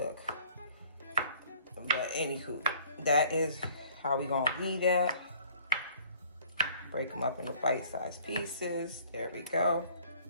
But anywho, that is how we gonna eat that. Break them up into bite-sized pieces. There we go.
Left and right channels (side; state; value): both; inverted; correlation -0.55